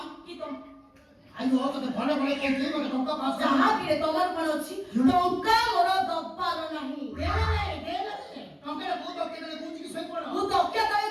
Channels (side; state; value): both; identical; correlation 1.00